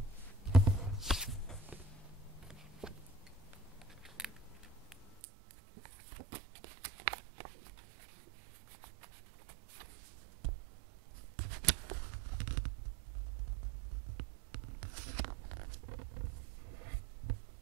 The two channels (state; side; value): drops out; left; at 5.2 s